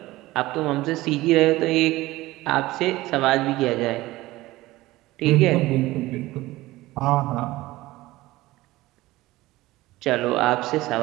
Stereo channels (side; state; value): left; quieter; 18.2 dB